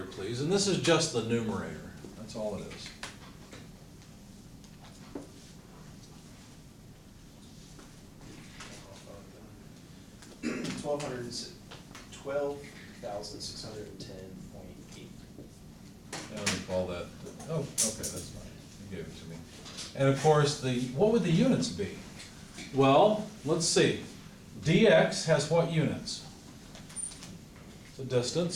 please. And this is just the numerator. That's all it is. $12,610.8. And we call that, oh, okay, that's fine. You gave it to me. And of course, what would the units be? Well, let's see. dx has what units? The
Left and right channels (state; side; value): identical; both; correlation 1.00